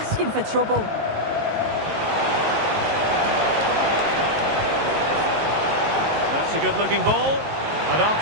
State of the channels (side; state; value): left; late; 19 ms